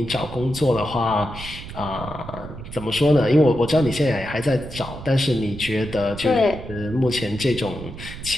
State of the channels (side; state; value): right; noise; rumble, 12 dB below the sound